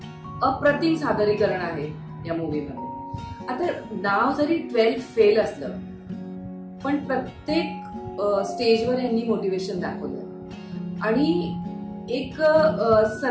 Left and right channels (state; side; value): identical; both; correlation 1.00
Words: अप्रतिम सादरीकरण आहे या मूवीमध्ये. आता नाव जरी 12th फेल असलं पण प्रत्येक स्टेजवर यांनी मोटिवेशन दाखवलं आणि एक